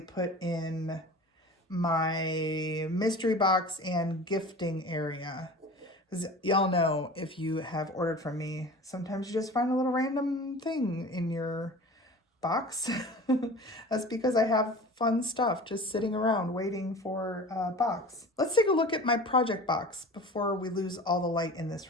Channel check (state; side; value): normal; both; correlation 0.38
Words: in my mystery box and gifting area. Because y'all know, if you have ordered from me, sometimes you just find a little random thing in your box. That's because I have fun stuff just sitting around waiting for a box. Let's take a look at my project box before we lose all the light in